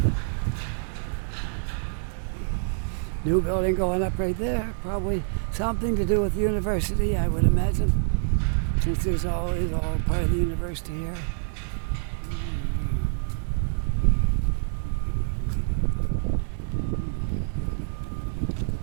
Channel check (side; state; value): left; silent; digital silence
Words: New building going up right there. Probably something to do with the university, I would imagine, since there's always all part of the university here.